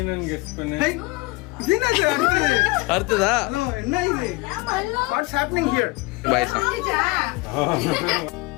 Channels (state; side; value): quieter; right; 24.1 dB